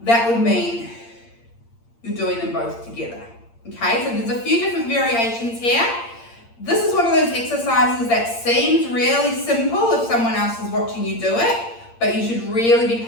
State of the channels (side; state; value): right; late; 8.7 ms